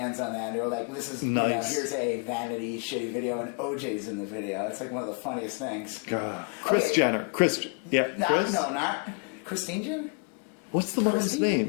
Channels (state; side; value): quieter; right; 37.1 dB